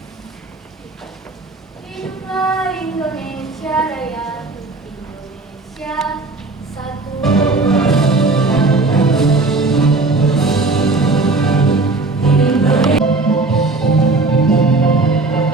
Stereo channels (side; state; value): left; quieter; 3.4 dB